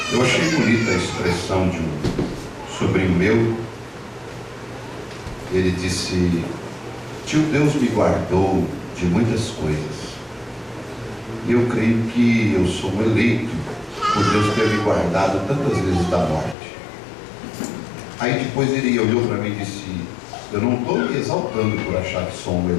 Eu achei bonita a expressão de um sobrinho meu. Ele disse: tio, Deus me guardou de muitas coisas. Eu creio que eu sou um eleito por Deus ter me guardado tantas vezes da morte. Aí depois ele olhou para mim e disse: eu não estou me exaltando por achar que sou um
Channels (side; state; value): right; drops out; at 16.6 s